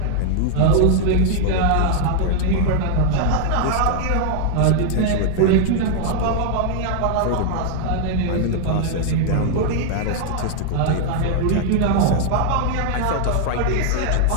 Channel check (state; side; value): different; both; correlation 0.00